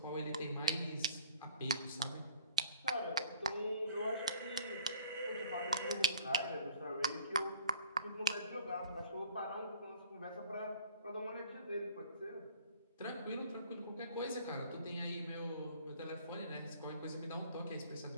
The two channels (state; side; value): inverted; both; correlation -0.50